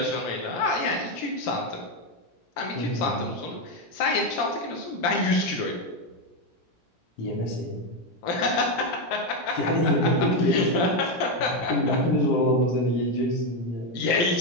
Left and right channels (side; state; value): right; late; 17 ms